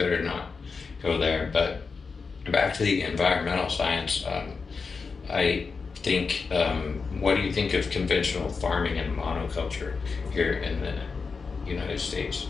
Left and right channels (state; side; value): quieter; right; 4.9 dB